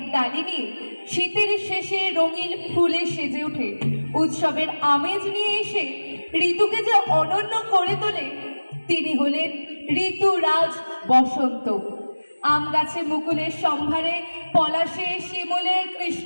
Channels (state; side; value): inverted; both; correlation -1.00